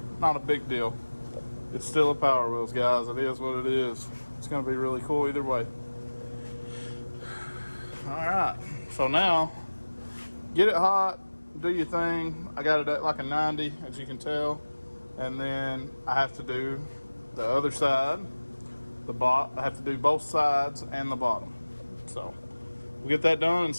Not a big deal. It's still a Power Wheels, guys. It is what it is. It's going to be really cool either way. Alright, so now, get it hot, do your thing. I got it at like a 90, as you can tell. And then I have to do the other side, I have to do both sides and the bottom. So, we'll get that done and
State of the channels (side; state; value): both; inverted; correlation -1.00